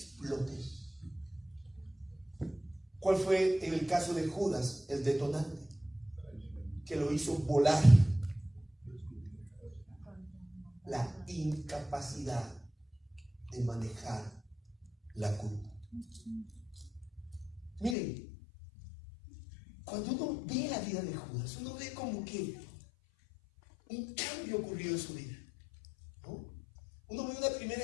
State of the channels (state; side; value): drops out; right; at 17.9 s